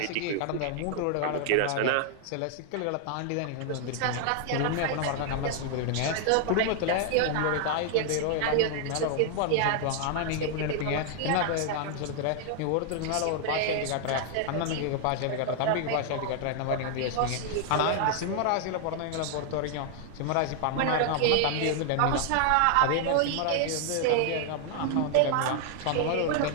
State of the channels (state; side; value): different; both; correlation 0.00